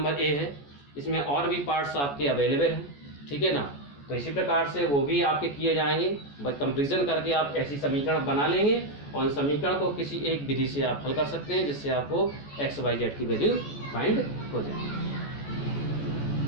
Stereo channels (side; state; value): right; late; 14 ms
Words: ए है, इसमें और भी पार्ट्स आपके अवेलेबल हैं, ठीक है ना। तो इसी प्रकार से वो भी आपके किए जाएंगे, बस कंपैरिजन करके आप ऐसी समीकरण बना लेंगे और उन समीकरण को किसी एक विधि से आप हल कर सकते हैं, जिससे आपको एक्स वाई जेड की वैल्यू फाइंड हो जाए।